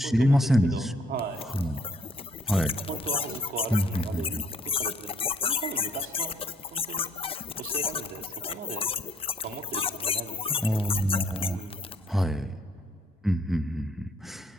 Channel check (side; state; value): both; normal; correlation 0.64